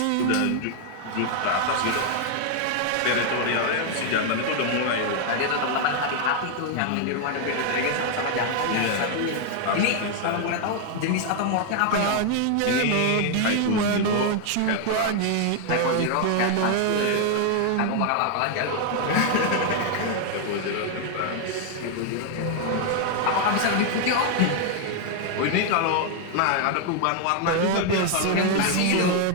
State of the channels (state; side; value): different; both; correlation 0.00